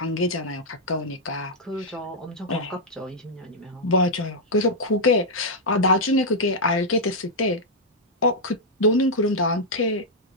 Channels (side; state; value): both; normal; correlation -0.05